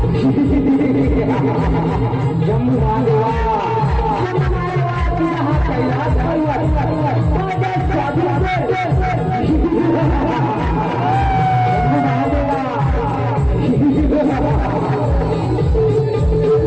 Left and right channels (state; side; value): identical; both; correlation 1.00